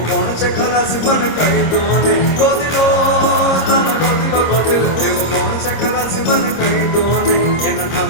કોણ છે ખલાસી મને કહી દો ને. ગોતી લો, તમે ગોતી લો, ગોતી લો. એવો કોણ છે ખલાસી મને કહી દો ને, એના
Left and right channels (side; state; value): right; late; 26 ms